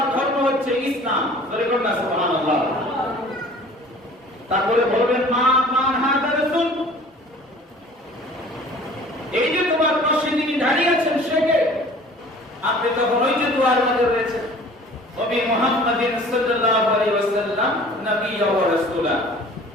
ধর্ম হচ্ছে ইসলাম। বলুন না সুবহানাল্লাহ। তারপরে বলবেন মা মান হাদা রাসূল, এই যে তোমার পাশে যিনি দাঁড়িয়ে আছেন সে কে? আপনি তখন ওই যে দোয়ার মধ্যে রয়েছে নবী মুহাম্মদিন সাল্লাল্লাহু আলাইহি ওয়াসাল্লাম নবিয়্যা ওয়া রাসূলা,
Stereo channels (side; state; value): both; normal; correlation 0.48